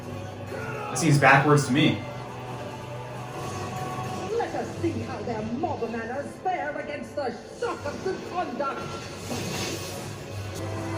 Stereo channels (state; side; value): identical; both; correlation 1.00